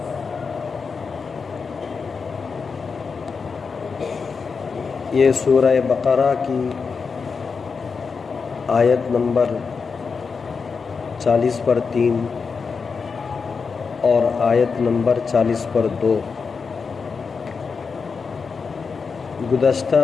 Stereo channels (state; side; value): quieter; right; 5.2 dB